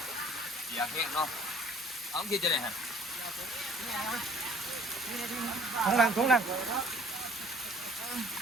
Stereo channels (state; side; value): normal; both; correlation 0.55